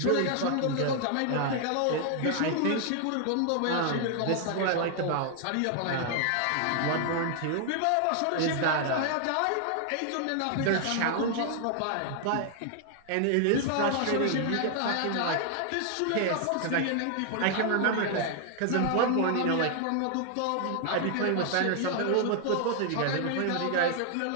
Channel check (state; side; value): different; both; correlation 0.00